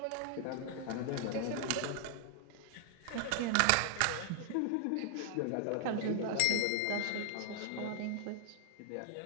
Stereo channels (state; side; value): different; both; correlation 0.00